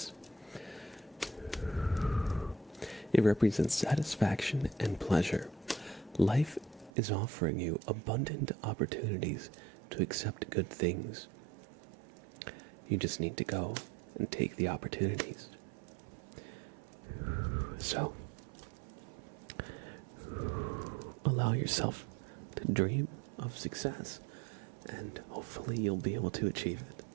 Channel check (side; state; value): left; drops out; at 6.9 s